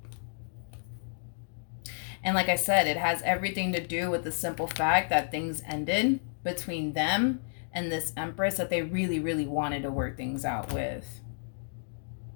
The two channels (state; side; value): silent; right; digital silence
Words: And like I said, it has everything to do with the simple fact that things ended between them and this Empress that they really, really wanted to work things out with.